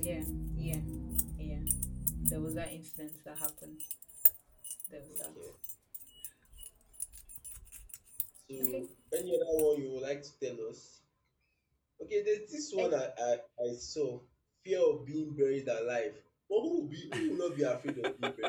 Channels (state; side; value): identical; both; correlation 1.00